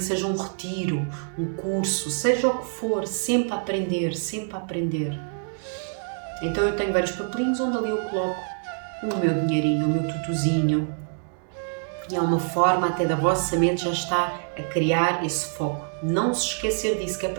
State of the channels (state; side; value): silent; left; 61 dB below the other